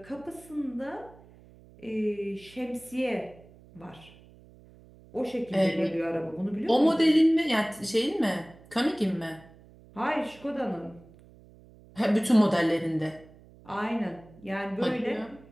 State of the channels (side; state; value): right; noise; hum, 24 dB below the sound